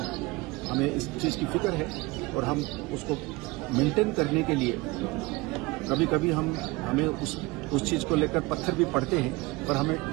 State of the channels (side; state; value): left; quieter; 23.1 dB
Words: इस चीज की फिक्र है और हम उसको मेंटेन करने के लिए कभी कभी हमें उस चीज को लेकर पत्थर भी पड़ते हैं, पर